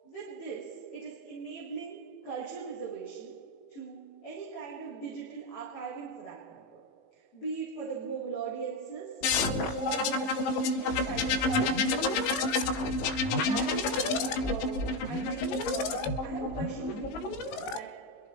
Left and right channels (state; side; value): late; right; 18 ms